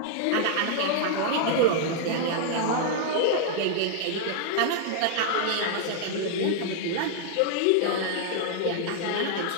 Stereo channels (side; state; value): both; different; correlation -0.01